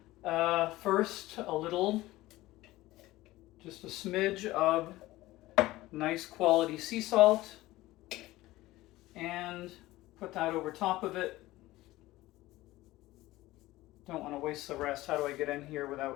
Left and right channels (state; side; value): quieter; right; 17.7 dB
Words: first a little, just a smidge of nice quality sea salt, and put that over top of it. Don't want to waste the rest. How do I get in here